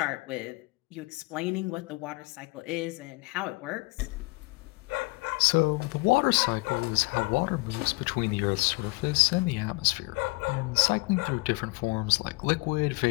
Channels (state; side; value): quieter; right; 26.0 dB